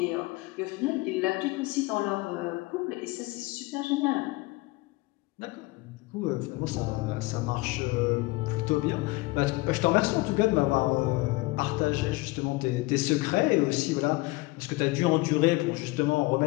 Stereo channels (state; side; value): quieter; right; 22.3 dB